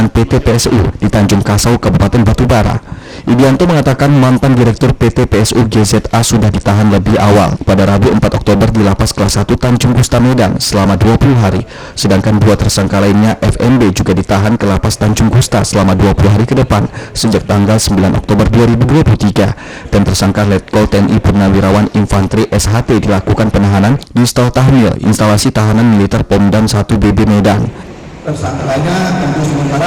PT PSU di Tanjung Kasau, Kabupaten Batubara. Idianto mengatakan mantan Direktur PT PSU GZA sudah ditahan lebih awal pada Rabu 4 Oktober di Lapas Kelas 1 Tanjung Gusta Medan selama 20 hari, sedangkan 2 tersangka lainnya FNB juga ditahan ke Lapas Tanjung Gusta selama 20 hari ke depan sejak tanggal 9 Oktober 2023 dan tersangka Letkol TNI Purnawirawan Infantri SHT dilakukan penahanan di Stel Tahmil instalasi tahanan militer Pomdam 1 BB Medan. Tersangkanya tentu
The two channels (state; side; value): identical; both; correlation 1.00